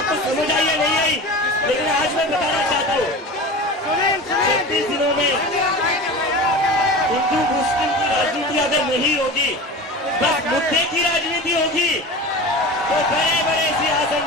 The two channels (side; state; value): both; normal; correlation 0.32